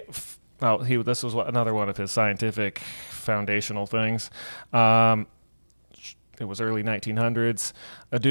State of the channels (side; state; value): both; inverted; correlation -1.00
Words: this was another one of his scientific foundational things. It was early 1900s. A